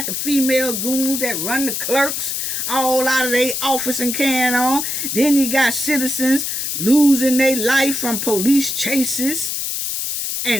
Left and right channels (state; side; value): noise; left; hiss, 2 dB below the sound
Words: the female goons that run the clerks all out of their office and carrying on. Then you got citizens losing their life from police chases